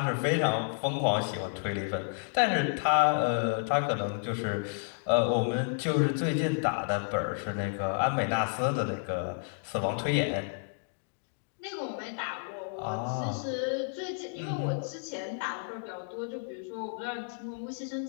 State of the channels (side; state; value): right; silent; digital silence